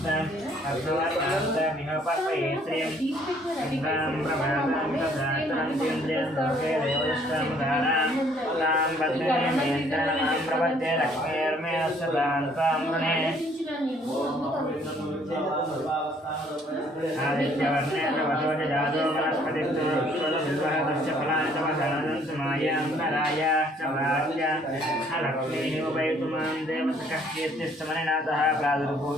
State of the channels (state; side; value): normal; both; correlation 0.62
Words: अर्धवर्णान्तमिह पर्पये श्रियं इन्द्रां प्रभातां तथातरन्तीन्द्रियं लोके देवदष्टामुदारां तां पद्मिनीं यन्त्रमां प्रपद्ये लक्ष्मीर्मे सदां तां वृणे आदित्यवर्णेन वधोज जातो वनस्पतिस्तु विश्वदविर्वहतस्य फलानि तव दानन्तु मायान्तरायाश्च प्राच्य लक्ष्मीः उपैतुमां देवतकः कीर्तिस्तमनिनाथः